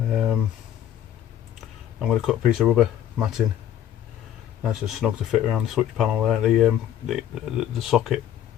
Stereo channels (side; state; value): right; quieter; 11.0 dB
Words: going to cut a piece of rubber matting, nice and snug to fit around the switch panel there. The socket,